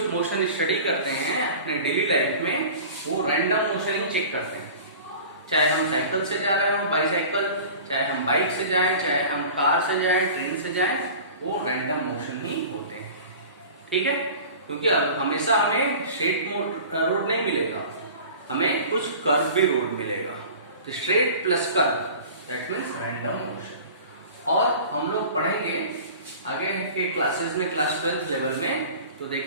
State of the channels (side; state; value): both; inverted; correlation -0.40